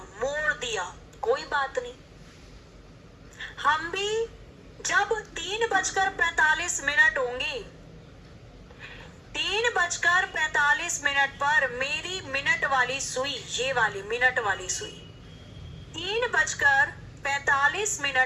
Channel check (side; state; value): both; identical; correlation 1.00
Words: दिया। कोई बात नहीं, हम भी जब 3:45 होंगे, 3:45 पर मेरी मिनट वाली सुई, ये वाली मिनट वाली सुई,